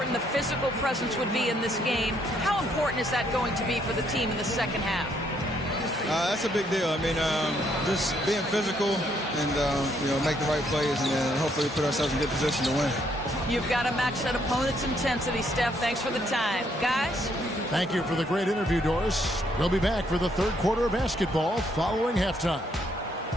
the physical presence would be in this game. How important is that going to be for the team in the second half? That's a big deal. I mean, just being physical and, make the right plays and then hopefully put ourselves in good position to win. You've got to match that opponent's intensity, Steph. Thanks for the time. Guys? Thank you for the great interview, Doris. We'll be back for the 3rd quarter of basketball following halftime.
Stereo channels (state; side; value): normal; both; correlation 0.71